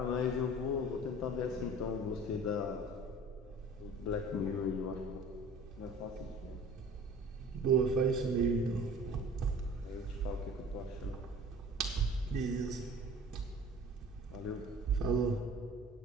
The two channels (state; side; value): normal; both; correlation 0.44